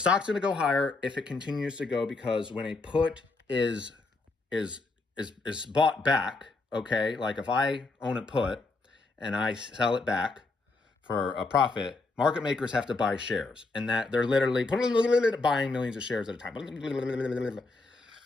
going to go higher if it continues to go, because when a put is bought back, okay, like if I own a put and I sell it back for a profit, market makers have to buy shares, and that they're literally buying millions of shares at a time. When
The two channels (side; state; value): right; quieter; 3.5 dB